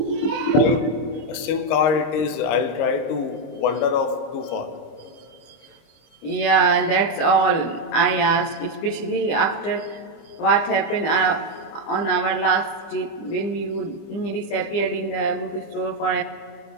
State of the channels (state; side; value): late; right; 25 ms